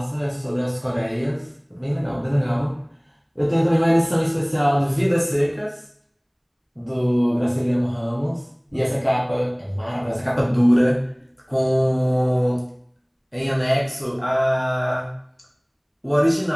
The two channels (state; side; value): identical; both; correlation 1.00